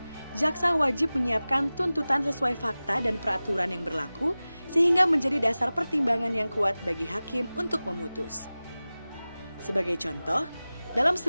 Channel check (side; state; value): both; inverted; correlation -0.97